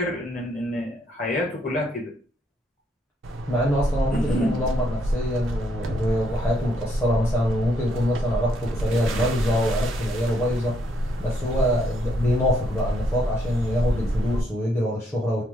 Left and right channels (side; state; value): both; normal; correlation 0.73